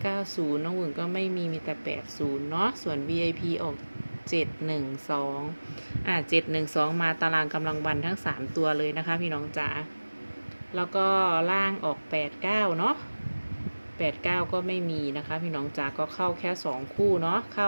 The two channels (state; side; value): inverted; both; correlation -1.00